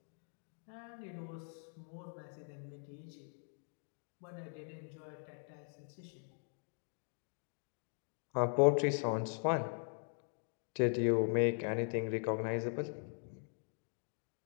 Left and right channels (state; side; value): silent; right; 51 dB below the other